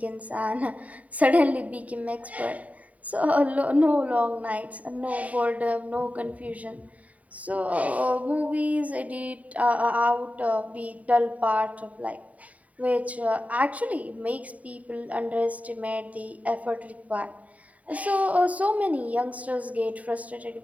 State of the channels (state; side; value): late; left; 0.070 ms